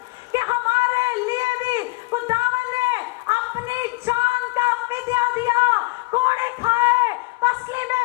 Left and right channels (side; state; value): right; quieter; 23.8 dB